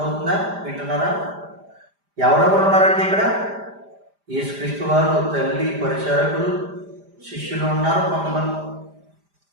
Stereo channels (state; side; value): late; left; 5.0 ms